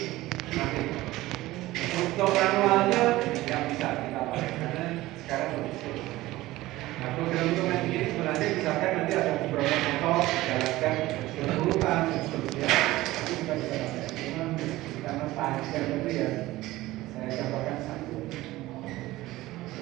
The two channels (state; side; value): quieter; left; 17.6 dB